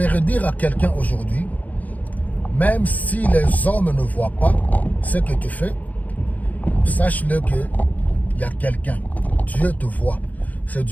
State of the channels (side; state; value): right; late; 0.078 ms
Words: dire à quelqu'un aujourd'hui, même si les hommes ne voient pas ce que tu fais, sache-le qu'il y a quelqu'un. Dieu te voit. C'est